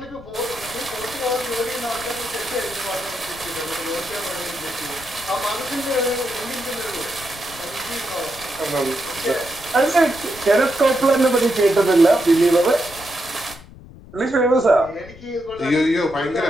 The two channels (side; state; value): left; noise; rumble, 19 dB below the sound